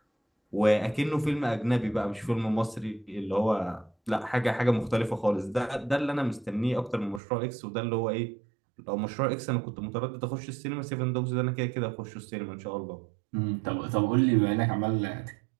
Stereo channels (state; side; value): drops out; left; at 7.2 s